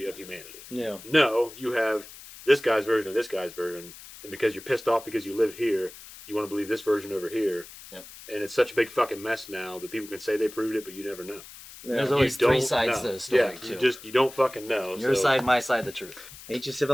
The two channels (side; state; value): left; noise; hiss, 17 dB below the sound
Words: of humanity. yeah. No, you have this guy's version of this guy's version, and because you're pissed off because you live here, you want to believe this version over here. Yep. And it's such a big fucking mess now that people can say they proved it, but you never know. There's yeah. always You three don't sides know. to the story, Yeah, too. you don't fucking know. Your so side, my side, the truth. Ancient